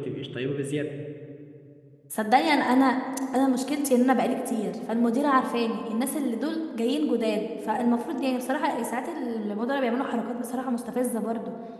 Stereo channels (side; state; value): both; identical; correlation 1.00